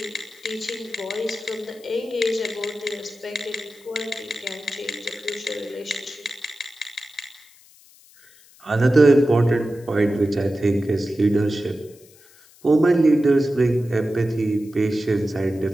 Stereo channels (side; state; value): left; noise; hiss, 26 dB below the sound